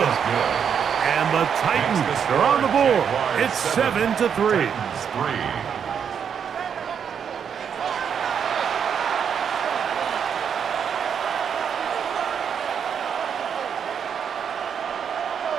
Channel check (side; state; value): left; quieter; 7.5 dB